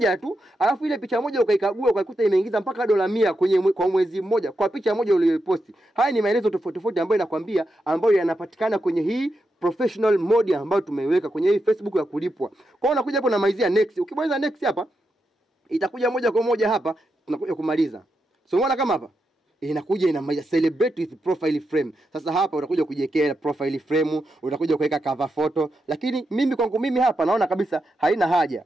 tu, alafu ile picha moja ukaikagua ukaikuta imeingiza mpaka $100 kwa mwezi mmoja kwa picha moja uliyoposti. Haya ni maelezo tofauti ambayo nakwambia ambayo yanapatikana kwenye hii professional mode ambayo tumeiweka kwenye hii Facebook ya kulipwa. Kwa hiyo unakuja hapo na maizia next. Ukibonyeza next hapa itakuja moja kwa moja hapa tunakuja kumaliza. So unaona kama hapa inakuja ina celebrate with profile frame. Sasa hapa utakuja kujiwekea profile frame, utakuja kuweka cover photo, lakini mimi kwangu mimi hapa naona kabisa haina haja.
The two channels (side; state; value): both; normal; correlation 0.86